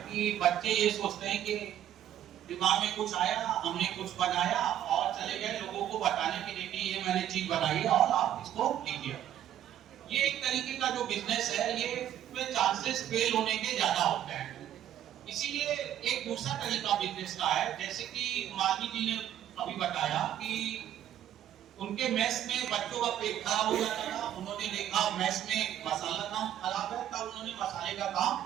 कि बच्चे ये सोचते हैं कि दिमाग में कुछ आया, हमने कुछ बनाया और चले गए लोगों को बताने के लिए कि ये मैंने चीज बनाई है और आप इसको लीजिए। ये एक तरीके का जो बिजनेस है ये में चांसेस फेल होने के ज्यादा होते हैं। इसीलिए एक दूसरा तरीका बिजनेस का है, जैसे कि मालवी जी ने अभी बताया कि उनके मेस में बच्चों का पेट खराब हो जाता था, उन्होंने देखा मेस में मसाला काम खराब है, तब उन्होंने मसाले का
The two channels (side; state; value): left; quieter; 11.2 dB